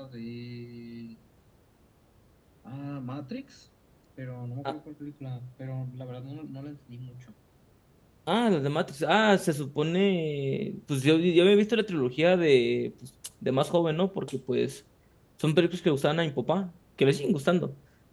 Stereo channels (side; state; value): both; identical; correlation 1.00